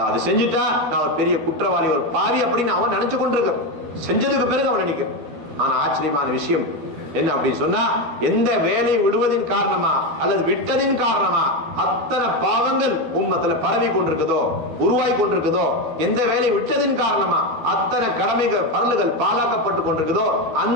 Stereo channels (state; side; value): late; left; 12 ms